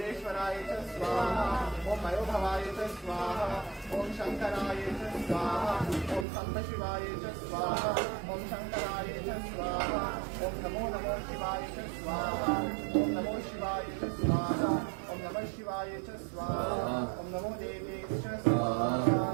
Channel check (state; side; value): drops out; left; at 6.2 s